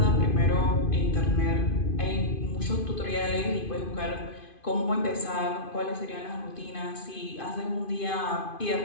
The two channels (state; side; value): late; right; 2.5 ms